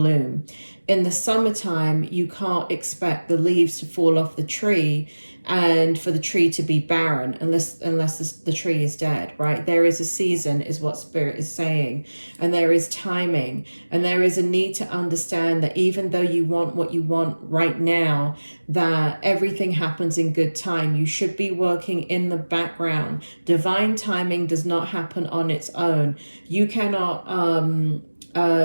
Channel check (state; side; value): inverted; both; correlation -1.00